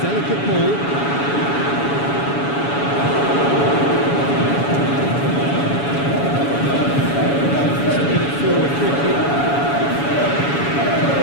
delicate ball. Get it forward quickly.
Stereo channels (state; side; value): late; right; 7.1 ms